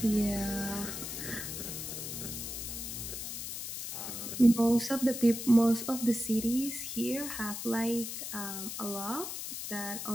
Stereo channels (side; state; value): left; noise; hiss, 6 dB below the sound